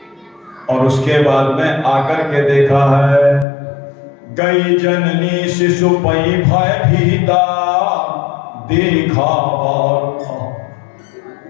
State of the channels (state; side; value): drops out; right; at 3.5 s